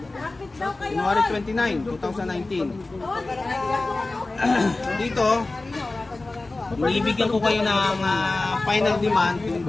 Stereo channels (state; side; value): quieter; right; 3.2 dB